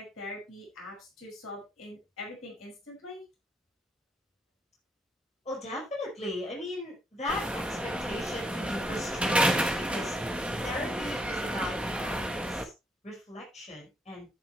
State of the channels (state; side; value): normal; both; correlation 0.73